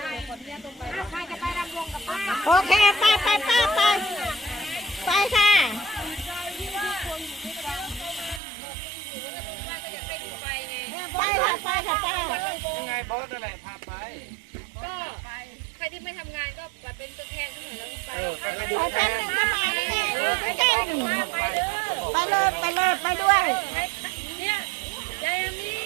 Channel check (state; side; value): drops out; left; at 8.4 s